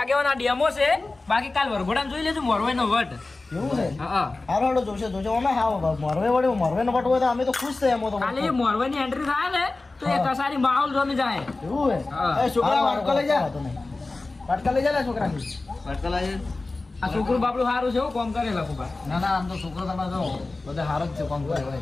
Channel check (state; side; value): quieter; right; 3.3 dB